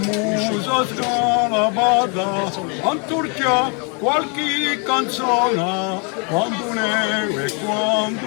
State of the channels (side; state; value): right; quieter; 35.7 dB